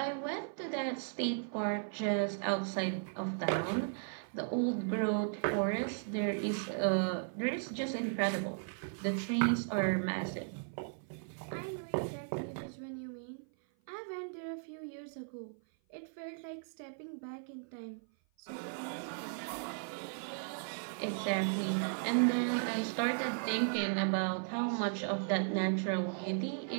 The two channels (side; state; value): left; silent; 54 dB below the other